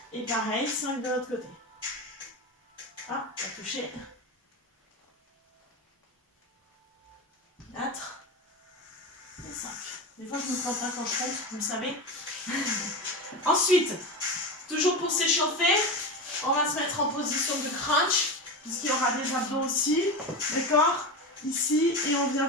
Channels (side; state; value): both; normal; correlation 0.22